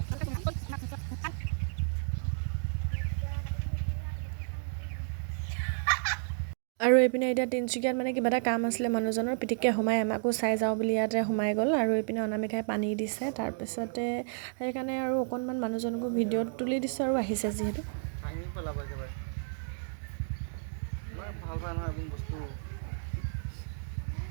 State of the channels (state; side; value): silent; left; digital silence